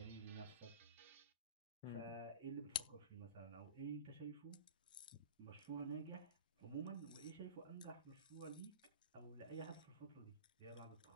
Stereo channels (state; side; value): inverted; both; correlation -0.31